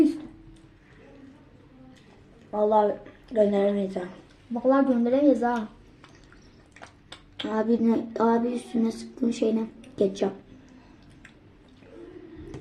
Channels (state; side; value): identical; both; correlation 1.00